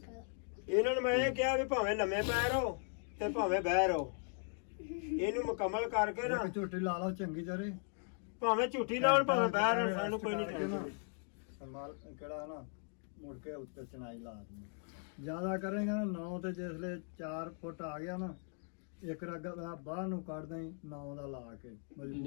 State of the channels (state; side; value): silent; right; 52 dB below the other